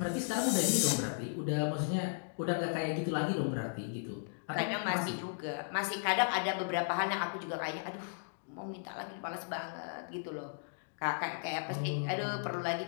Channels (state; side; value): silent; right; digital silence